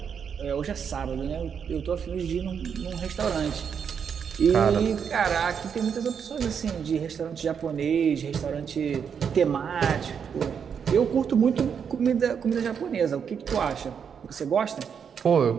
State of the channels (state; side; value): quieter; left; 7.2 dB